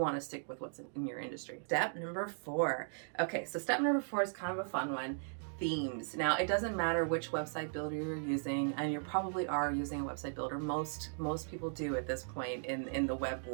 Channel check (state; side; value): silent; left; digital silence